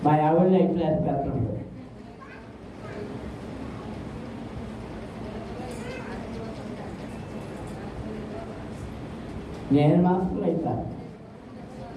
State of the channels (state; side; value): identical; both; correlation 1.00